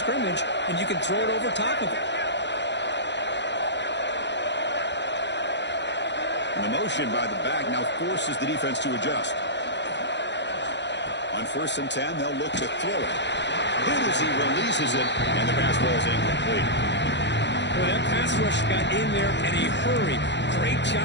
and you can throw it over top of it. And the motion by the back now forces the defense to adjust. On first and 10, they'll look to throw it. Good as he releases it, and the pass ball is incomplete. Well, that pass rush got in there in a hurry. Great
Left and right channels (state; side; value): late; right; 0.52 ms